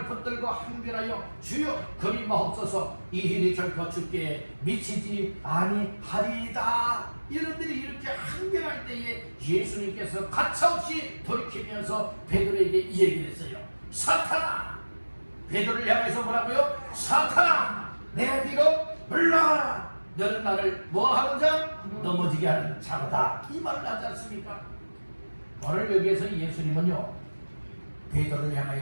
붙들고 항변하여 주여 그리 마옵소서 이 일이 결코 주께 미치지 아니하리이다. 이런들이 이렇게 항변할 때에 예수님께서 가차없이 돌이키면서 베드로에게 이 얘기를 했어요. 사탄아, 베드로를 향해서 뭐라고요? 사탄아 내 뒤로 물러가라. 너는 나를 뭐하는 자? 넘어지게 하는 자로다. 이 말을 하지 않습니까? 오늘 여기에서 예수님은요 베드로를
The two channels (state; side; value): inverted; both; correlation -1.00